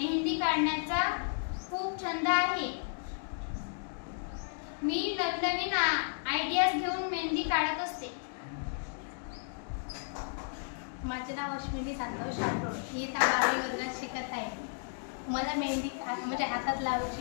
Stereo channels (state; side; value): silent; right; digital silence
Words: काढण्याचा खूप छंद आहे. मी नवीन आयडियाज घेऊन मेहंदी काढत असते. माझे नाव अश्विनी संतोष राठोड. मी 12वी वर्गात शिकत आहे. मला मेहंदी म्हणजे हातात